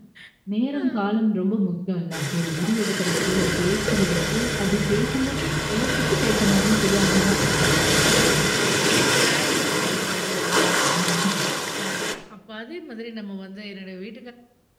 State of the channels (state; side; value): identical; both; correlation 1.00